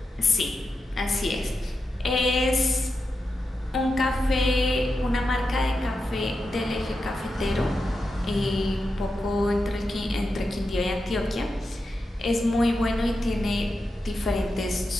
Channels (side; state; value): both; normal; correlation 0.89